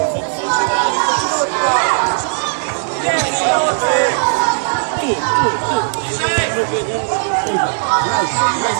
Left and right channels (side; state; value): left; silent; digital silence